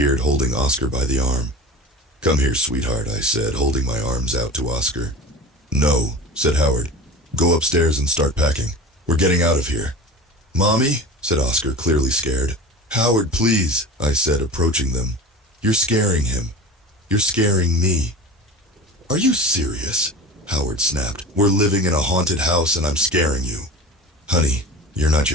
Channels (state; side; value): normal; both; correlation 0.33